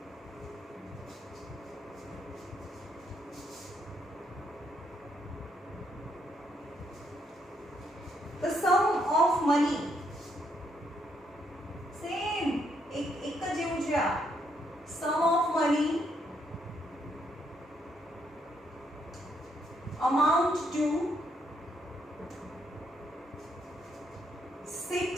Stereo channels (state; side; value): normal; both; correlation 0.74